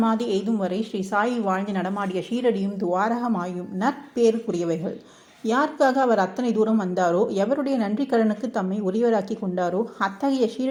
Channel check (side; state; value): both; identical; correlation 1.00